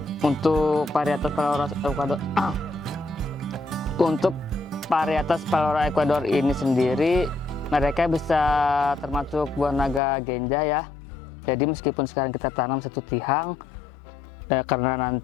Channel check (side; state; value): right; drops out; at 10.0 s